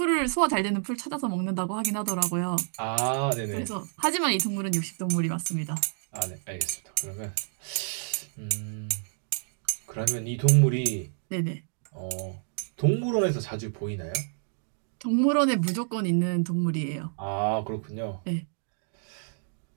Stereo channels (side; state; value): left; silent; digital silence